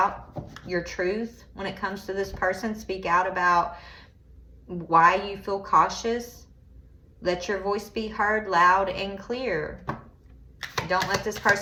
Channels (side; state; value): both; identical; correlation 1.00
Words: your truth when it comes to this person. Speak out about why you feel cautious. Let your voice be heard loud and clear. Don't let this